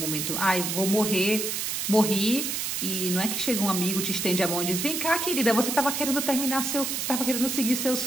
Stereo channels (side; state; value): right; noise; hiss, 2 dB below the sound